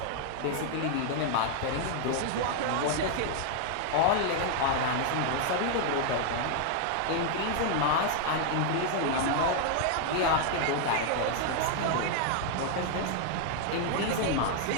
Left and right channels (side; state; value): both; different; correlation 0.00